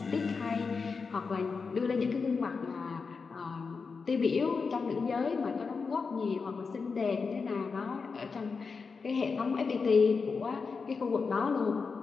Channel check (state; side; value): quieter; right; 4.9 dB